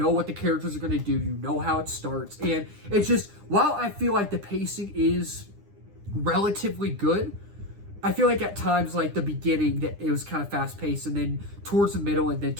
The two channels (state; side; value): late; left; 9.9 ms